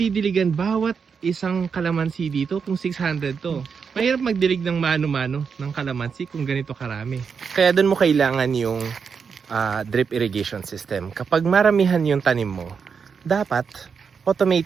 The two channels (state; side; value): quieter; left; 6.1 dB